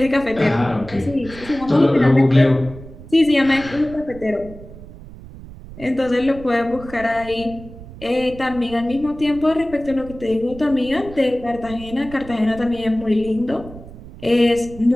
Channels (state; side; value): noise; right; rumble, 16 dB below the sound